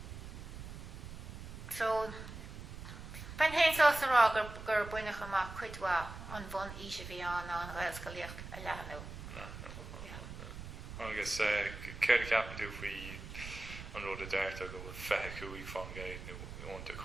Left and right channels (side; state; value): right; noise; rumble, 10 dB below the sound